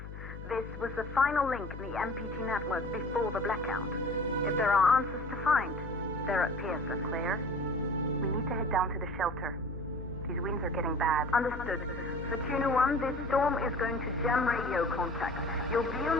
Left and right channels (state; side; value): noise; left; hum, 11 dB below the sound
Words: This was the final link in the MPT network before the blackout. If there are answers to find, they're at Pearson. Claire, we need to head down to the shelter. These winds are getting bad. Understood. Capitulo 1, this storm is going to jam radio contact. You'll be on